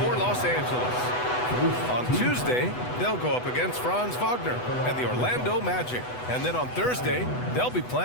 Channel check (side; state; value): right; late; 8.1 ms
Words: Los Angeles. On Tuesday, they'll go up against Franz Wagner and the Orlando Magic. And then on Thursday, they'll be